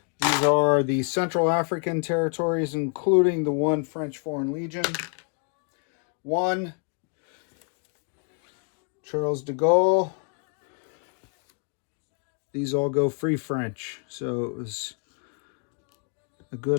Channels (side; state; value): right; quieter; 37.8 dB